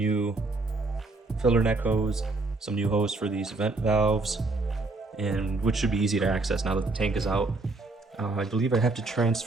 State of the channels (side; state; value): left; quieter; 3.3 dB